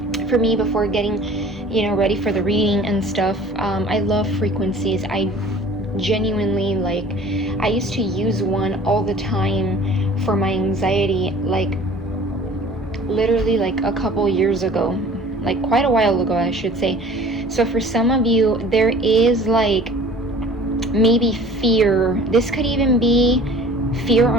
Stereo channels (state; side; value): normal; both; correlation 0.47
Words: me before getting, ready for the reading and stuff. I love frequencies. I genuinely, like, I used to use one all the time for my anxiety, like literally like a couple years ago, like quite a while ago, I should say. So for some of you, there is like maybe fear. This could even be fear